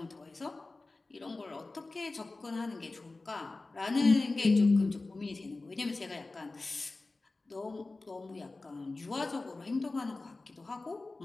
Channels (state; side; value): quieter; right; 3.3 dB